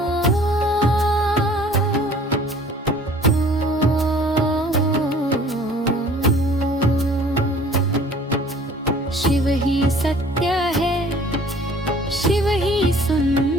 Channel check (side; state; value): both; normal; correlation 0.51